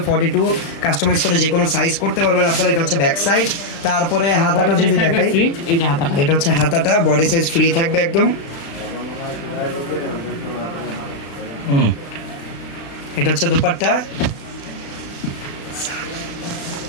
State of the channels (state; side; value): late; right; 35 ms